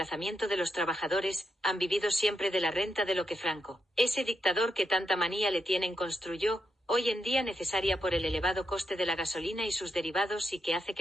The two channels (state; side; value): normal; both; correlation 0.83